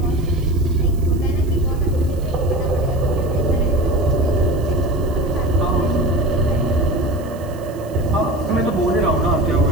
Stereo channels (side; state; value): right; noise; hiss, 24 dB below the sound